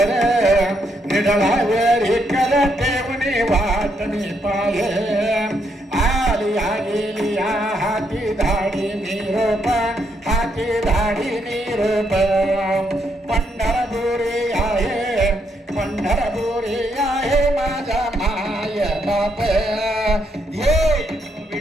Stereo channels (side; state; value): both; normal; correlation 0.76